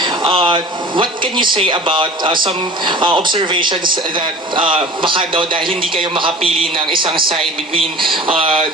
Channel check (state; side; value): normal; both; correlation 0.39